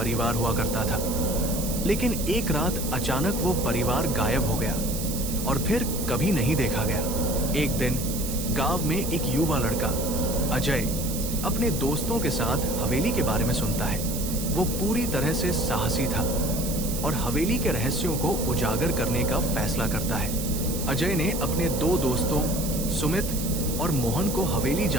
हुआ करता था, लेकिन एक रात अचानक वो परिवार गायब हो गया और फिर कभी नहीं देखा गया। एक दिन गांव में एक युवा लड़का अजय अपने दोस्तों के साथ हवेली के बारे में सुनता है। वो पूरी तरह से साहसी था और हवेली के रहस्यों को उजागर करने का फैसला करता है। अजय ने अपने दो दोस्तों सुमित और मोहन को हवेली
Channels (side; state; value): right; noise; hiss, 7 dB below the sound